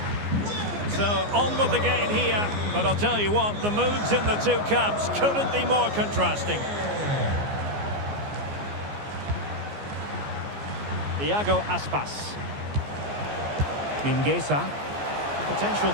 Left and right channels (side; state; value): left; late; 14 ms